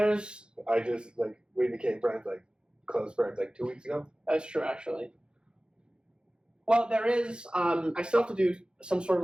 I just, like, we became friends, like, close friends, like, 2 weeks ago. That's true, actually. Well, there is, I still have to do some sort of,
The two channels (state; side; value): late; left; 0.051 ms